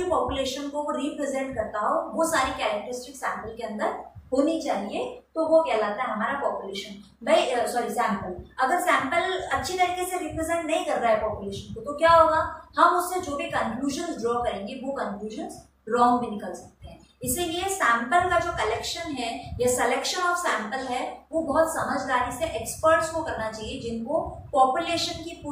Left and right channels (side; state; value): both; identical; correlation 1.00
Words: पॉपुलेशन को वो रिप्रेजेंट करता हो, वो सारी कैरेक्टरिस्टिक्स सैंपल के अंदर होनी चाहिए। तो वो कहलाता है हमारा पॉपुलेशन। भाई सैंपल। अगर सैंपल अच्छी तरीके से रिप्रेजेंट नहीं कर रहा है पॉपुलेशन को, तो क्या होगा? हम उससे जो भी कंक्लूजन ड्रॉ करेंगे वो कंक्लूजन रॉन्ग भी निकल सकते हैं। इसीलिए सैंपल का जो कलेक्शन है या सिलेक्शन ऑफ सैंपल है वो बहुत समझदारी से एक्सपर्ट्स को करना चाहिए, जिनको पॉपुलेशन की